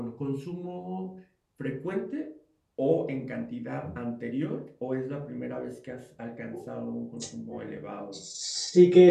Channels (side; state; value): both; identical; correlation 1.00